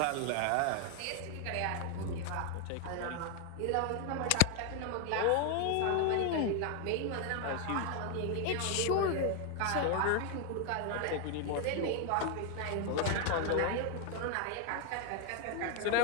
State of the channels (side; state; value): both; different; correlation 0.01